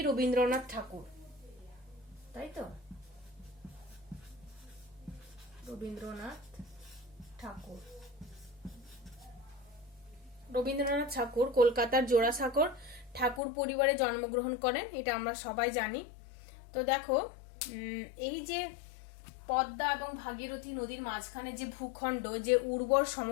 রবীন্দ্রনাথ ঠাকুর, তাই তো? রবীন্দ্রনাথ ঠাকুর। রবীন্দ্রনাথ ঠাকুর কলকাতার জোড়াসাঁকোর ঠাকুর পরিবারে জন্মগ্রহণ করেন, এটা আমরা সবাই জানি। তো দেখো, এই যে পদ্মা এবং ভাগীরথী নদীর মাঝখানে যে ভূখণ্ড, যে উর্বর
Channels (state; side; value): drops out; right; at 13.4 s